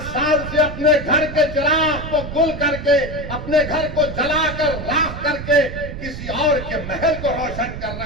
साल से अपने घर के चिराग को गुल करके, अपने घर को जलाकर राख करके किसी और के महल को रोशन कर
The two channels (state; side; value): noise; right; rumble, 9 dB below the sound